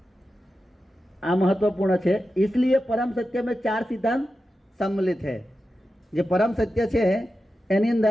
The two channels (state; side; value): normal; both; correlation 0.91